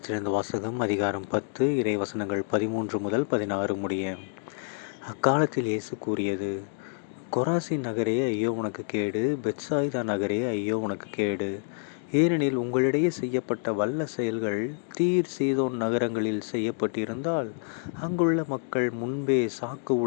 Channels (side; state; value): right; silent; digital silence